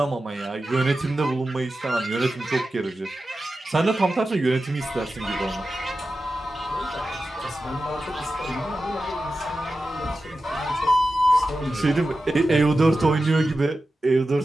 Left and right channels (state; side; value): normal; both; correlation 0.93